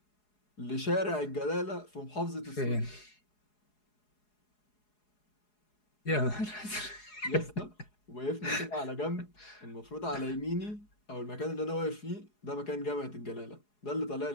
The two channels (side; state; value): right; late; 4.8 ms